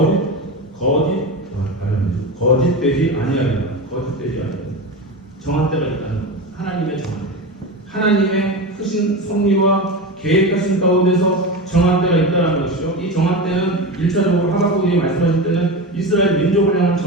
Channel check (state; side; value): normal; both; correlation 0.23